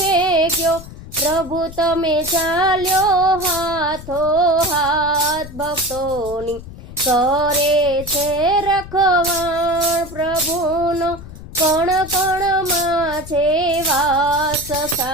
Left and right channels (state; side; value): noise; left; rumble, 14 dB below the sound